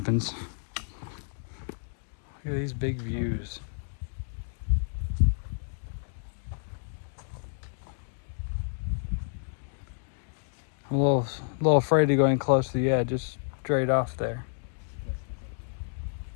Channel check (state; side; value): silent; right; digital silence